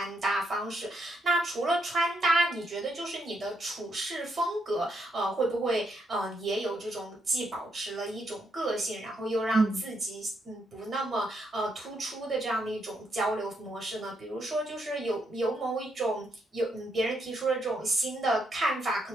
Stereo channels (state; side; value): normal; both; correlation 0.77